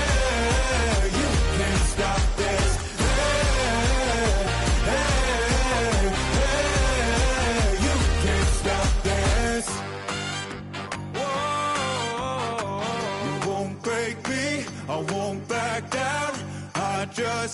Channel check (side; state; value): both; identical; correlation 1.00